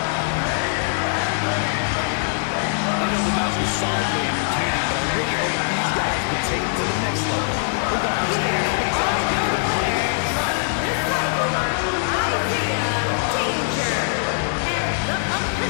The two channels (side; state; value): right; silent; digital silence